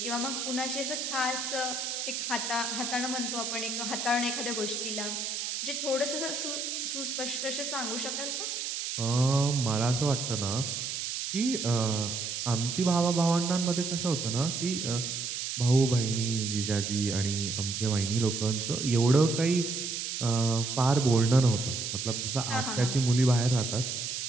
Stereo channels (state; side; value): noise; right; hiss, 3 dB below the sound